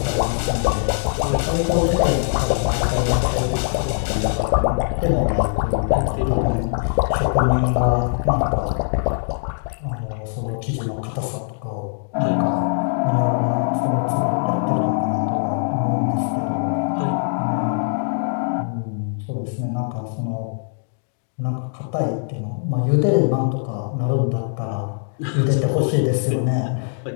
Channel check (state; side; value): silent; right; digital silence